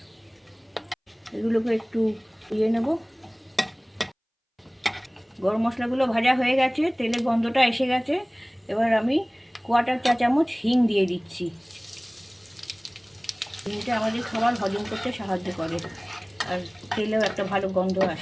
এগুলোকে একটু দিয়ে নেব। গরম মশলাগুলো ভাজা হয়ে গেছে, তেলের গন্ধটা এসে গেছে, এবার আমি 1/4 চা চামচ হিং দিয়ে দিচ্ছি। হিংটা আমাদের খাবার হজম করতে সাহায্য করে, আর তেলেও একটা ভালো গন্ধ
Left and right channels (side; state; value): both; identical; correlation 1.00